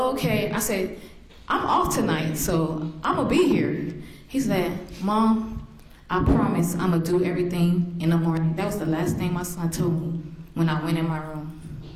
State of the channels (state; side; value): identical; both; correlation 1.00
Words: okay." I said, "I'm off tonight, so I'm gonna be here." He said, "Mom, I promise I'm gonna do everything in the morning." That was the last thing my son told me when I went in my room.